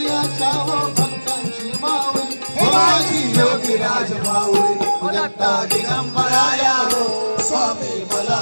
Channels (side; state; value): both; inverted; correlation -1.00